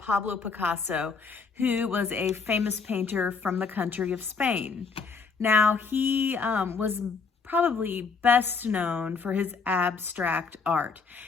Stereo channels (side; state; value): right; quieter; 5.0 dB